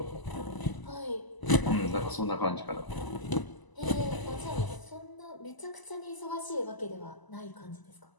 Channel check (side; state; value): right; late; 1.0 ms